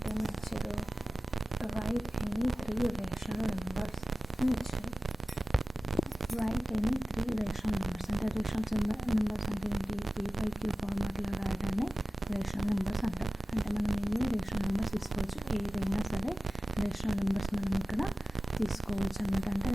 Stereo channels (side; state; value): both; normal; correlation 0.95